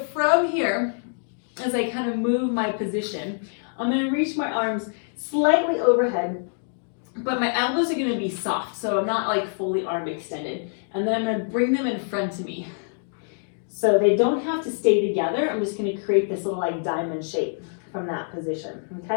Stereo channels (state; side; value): silent; right; 62 dB below the other